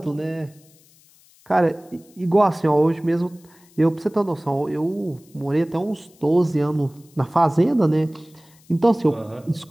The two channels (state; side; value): noise; left; hiss, 29 dB below the sound